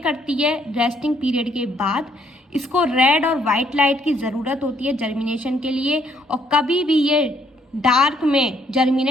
करती है रेस्टिंग पीरियड के बाद। इसको रेड और वाइट लाइट की ज़रूरत होती है जर्मिनेशन के लिए, और कभी भी ये डार्क में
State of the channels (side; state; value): both; normal; correlation 0.68